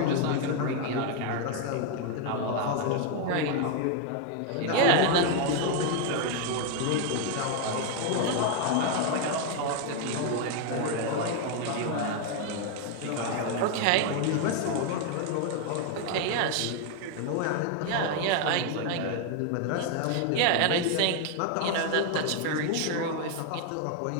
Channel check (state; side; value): different; both; correlation 0.01